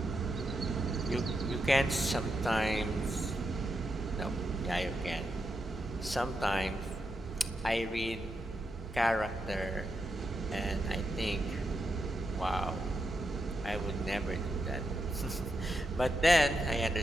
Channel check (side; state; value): both; normal; correlation 0.85